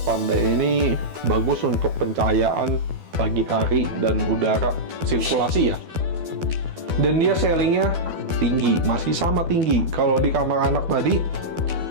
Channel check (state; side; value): late; left; 12 ms